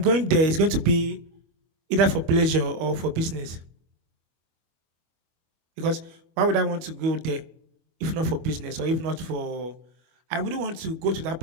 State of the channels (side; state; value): left; late; 25 ms